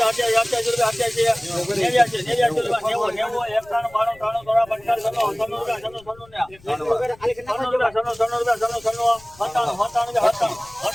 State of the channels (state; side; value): noise; left; rumble, 25 dB below the sound